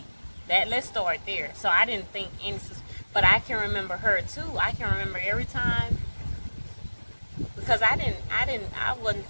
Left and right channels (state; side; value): inverted; both; correlation -1.00